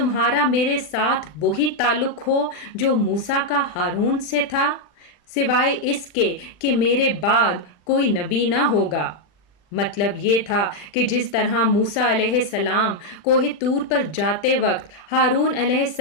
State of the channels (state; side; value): late; right; 39 ms